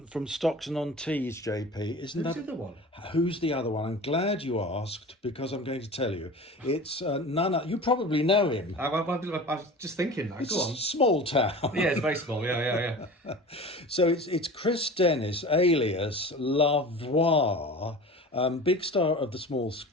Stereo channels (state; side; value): normal; both; correlation 0.36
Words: Stockton-on-Tees, JP. Isn't Who's that the other one? Who's the other one? I'm glad you asked, because I'm going to tell you. It's none other. You probably know him. I was just thinking that. It's Go on. a small town. Yeah, it's very small. Yeah. So it's Chris Dennis, alias Lavoie, Big star of the small